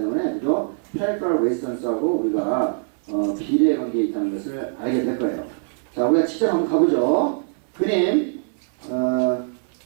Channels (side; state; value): left; silent; digital silence